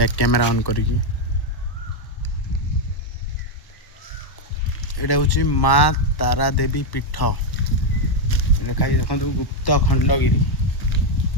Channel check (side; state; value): right; late; 1.1 ms